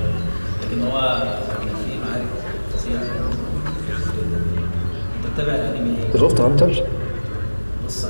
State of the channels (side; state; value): both; inverted; correlation -1.00